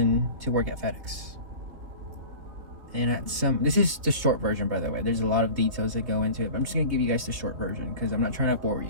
to work at FedEx. And this is the short version, by the way. There's a lot of details that go into it, but I'm just going to give you guys the short version because I'm not trying to bore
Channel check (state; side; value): late; left; 3.4 ms